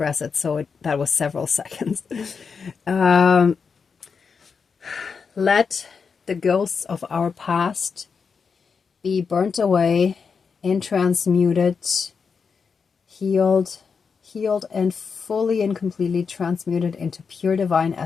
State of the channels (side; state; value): right; quieter; 5.6 dB